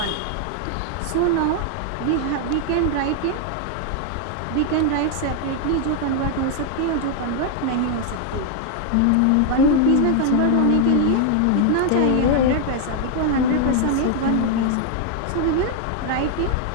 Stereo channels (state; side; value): different; both; correlation 0.00